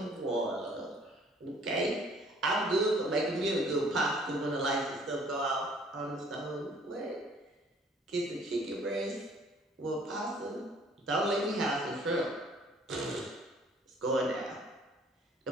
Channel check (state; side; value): normal; both; correlation 0.57